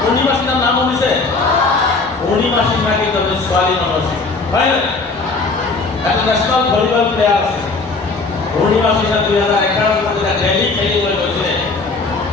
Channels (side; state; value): right; quieter; 3.9 dB